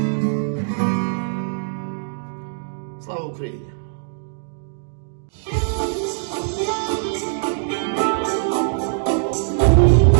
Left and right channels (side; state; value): left; silent; digital silence